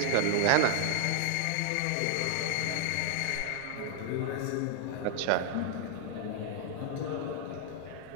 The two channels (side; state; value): both; different; correlation -0.01